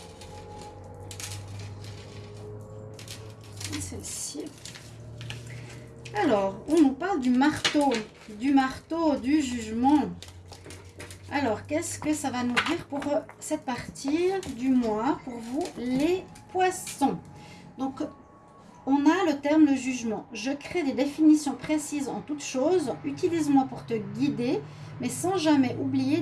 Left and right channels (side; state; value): both; identical; correlation 1.00